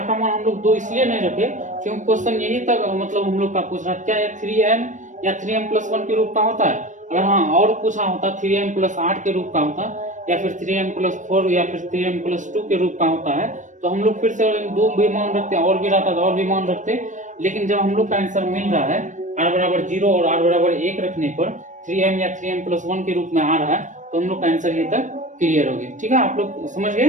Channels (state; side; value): late; left; 0.36 ms